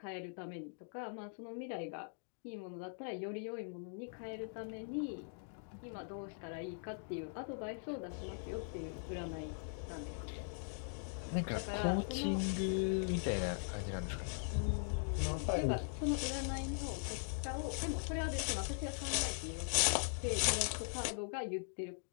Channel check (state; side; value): silent; right; digital silence